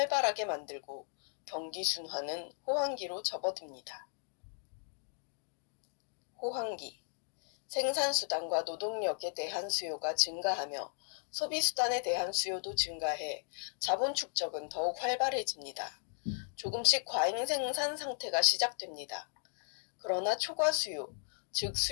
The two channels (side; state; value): right; silent; digital silence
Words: 만들고 경기 순환은 호황기로 접어듭니다. 호황기. 생산수단과 노동력에 대한 수요가 증가하며 소비수단에 대한 수요도 증가해 자본 축적은 더욱 활발해집니다. 조금씩 과잉 생산 상태가 시작됩니다. 그러나 초과 수요, 즉